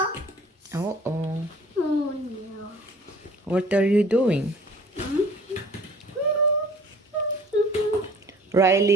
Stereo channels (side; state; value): both; normal; correlation 0.50